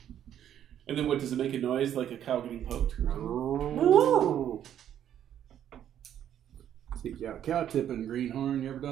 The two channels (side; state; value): left; quieter; 10.3 dB